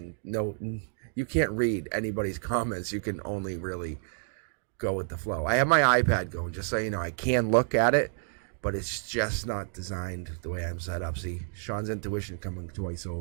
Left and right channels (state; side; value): silent; left; digital silence